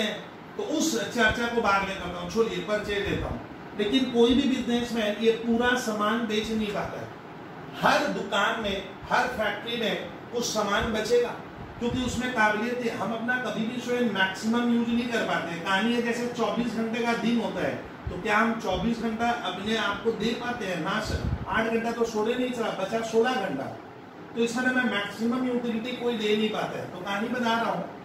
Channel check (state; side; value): identical; both; correlation 1.00